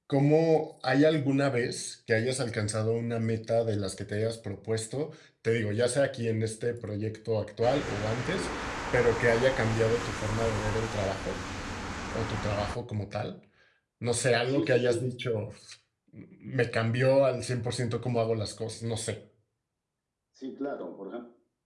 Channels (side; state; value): both; identical; correlation 1.00